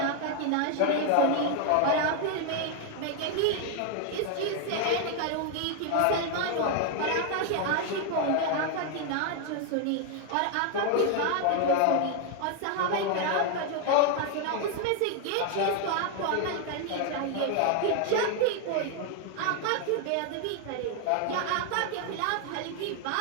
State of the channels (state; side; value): different; both; correlation 0.01